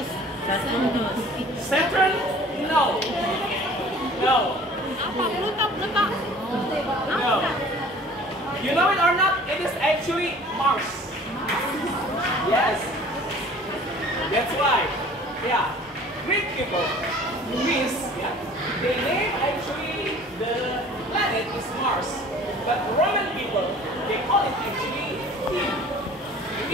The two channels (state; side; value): normal; both; correlation 0.48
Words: Saturn? No. No. No. You know it or not? It is actually Mars. Yes. That's why. Yeah. Greek people, Greece, yeah, they name actually the planet is Mars. But Roman people, they call it actually Eve.